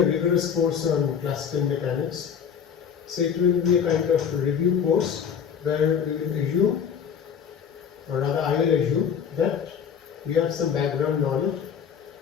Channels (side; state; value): right; quieter; 7.5 dB